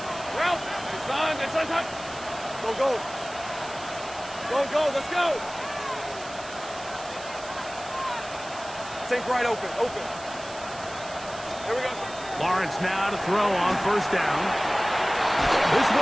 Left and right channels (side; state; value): right; noise; hiss, 16 dB below the sound